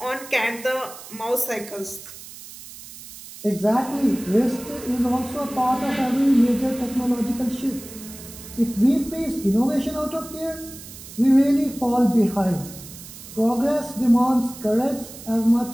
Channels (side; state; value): right; noise; hiss, 15 dB below the sound